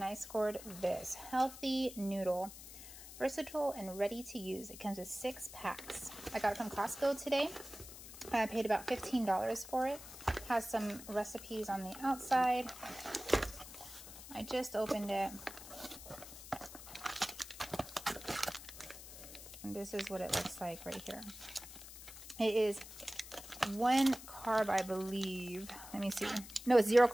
I scored this healthy noodle. Versatile and ready to use. It comes with 6 packs. I got it from Costco today. I paid about $15 for it. Has some recipes on the outside. I just opened it. And this is what it looks like right here. It is 1 carb, I believe. Let me see. No, it's 0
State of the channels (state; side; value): noise; left; hiss, 14 dB below the sound